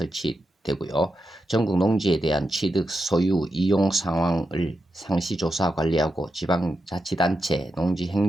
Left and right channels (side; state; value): both; normal; correlation 0.87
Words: 전국 농지에 대한 취득, 소유, 이용 상황을 상시조사 관리하고 지방자치단체